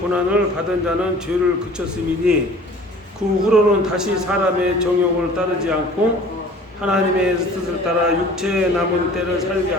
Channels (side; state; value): both; normal; correlation 0.46